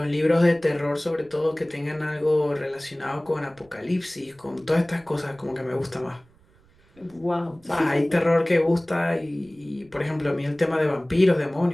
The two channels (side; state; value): right; noise; rumble, 30 dB below the sound